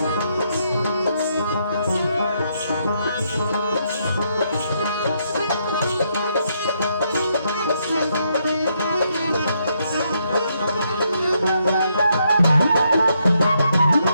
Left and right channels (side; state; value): both; inverted; correlation -0.76